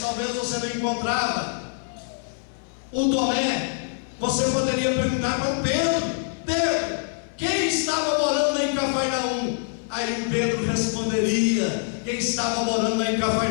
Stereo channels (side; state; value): right; silent; 58 dB below the other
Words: talvez você não encontrava o Tomé. Você poderia perguntar para o Pedro: Pedro, quem estava morando lá em Cafarnaum? Aí o Pedro responderia: quem estava morando lá em